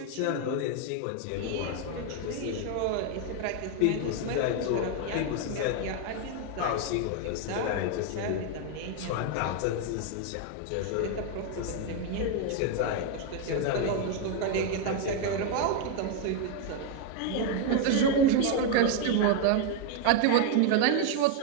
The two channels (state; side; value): different; both; correlation 0.01